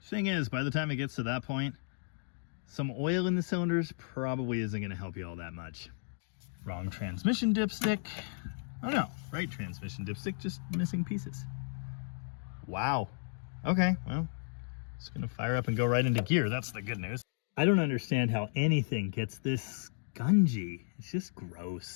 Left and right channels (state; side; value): silent; right; digital silence